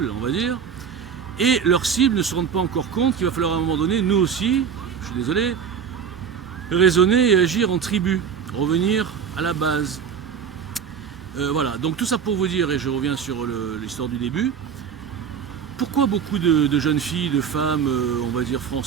on va dire. Et leurs cibles ne se rendent pas encore compte qu'il va falloir à un moment donné, nous aussi, je suis désolé, raisonner et agir en tribu, revenir à la base. Voilà, donc tout ça pour vous dire, et je reviens sur l'histoire du début, pourquoi beaucoup de jeunes filles, de femmes, on va dire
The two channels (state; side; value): quieter; left; 7.1 dB